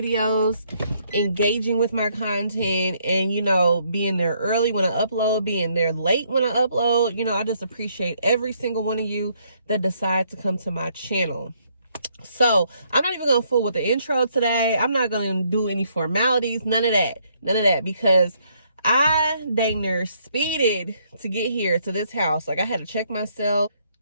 engaging with my content, and being there early when I upload, being there late when I upload. I just appreciate every single one of you that decide to come to my channel. So I'm not even gonna fool with the intro today. I'm not gonna do any formalities, none of that, because I dang near speeded to get here to this house. Like, I had to check myself.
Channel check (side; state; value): both; inverted; correlation -0.70